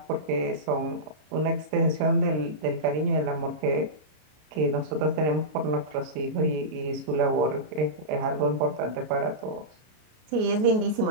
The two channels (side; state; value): left; late; 33 ms